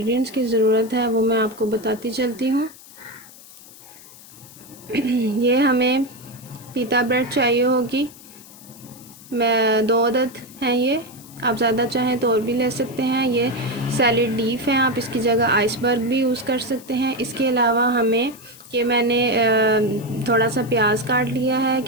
की ज़रूरत है वो मैं आपको बताती चलती हूँ। ये हमें पीता ब्रेड चाहिए होगी, मैं 2 अदद हैं ये। आप ज़्यादा चाहें तो और भी ले सकते हैं। ये सैलेड लीफ हैं, आप इसकी जगह आइसबर्ग भी यूज़ कर सकते हैं। इसके अलावा हमें मैंने थोड़ा सा प्याज काट लिया है,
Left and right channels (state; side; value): noise; left; hiss, 20 dB below the sound